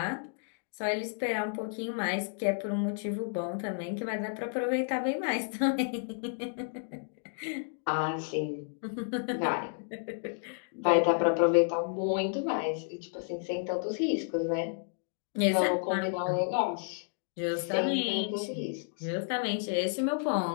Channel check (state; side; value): silent; right; digital silence